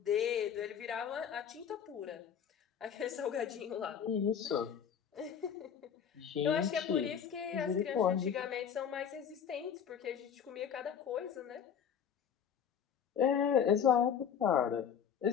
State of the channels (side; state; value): right; quieter; 8.0 dB